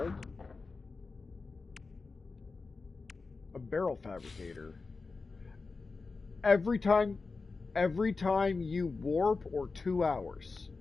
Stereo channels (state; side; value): quieter; right; 4.1 dB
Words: a barrel fabricator. Every time you warp or 2 hours.